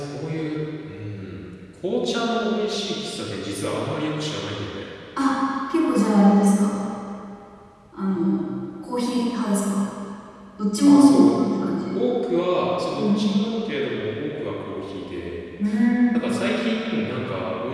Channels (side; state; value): both; identical; correlation 1.00